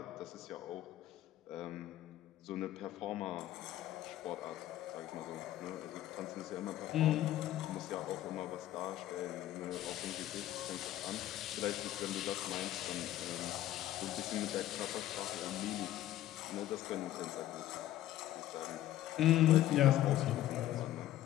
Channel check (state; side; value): quieter; right; 13.5 dB